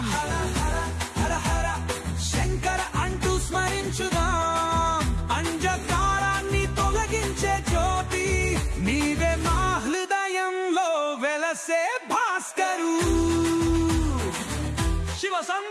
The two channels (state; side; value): identical; both; correlation 1.00